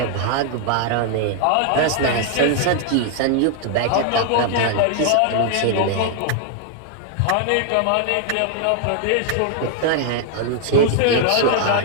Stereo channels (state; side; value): different; both; correlation 0.00